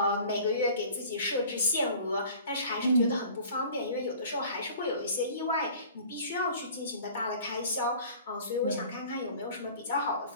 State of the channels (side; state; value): both; inverted; correlation -0.46